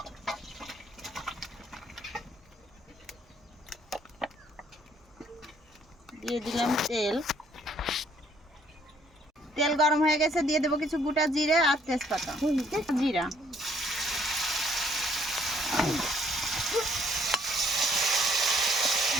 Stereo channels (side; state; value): both; normal; correlation 0.64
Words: দিয়ে দিলাম তেল। তেল গরম হয়ে গেছে, দিয়ে দেবো কিছু গোটা জিরে আর তেজপাতা। জিরা,